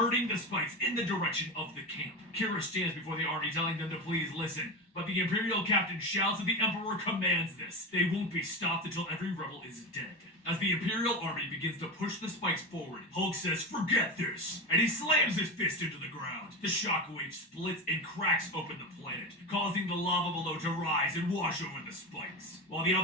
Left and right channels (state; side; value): normal; both; correlation 0.20